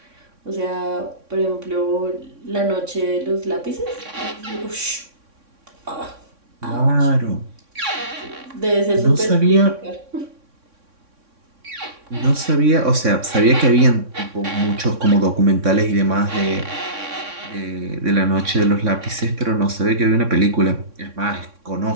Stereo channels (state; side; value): late; left; 3.6 ms